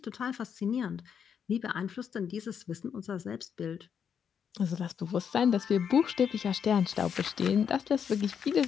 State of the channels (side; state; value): right; quieter; 7.5 dB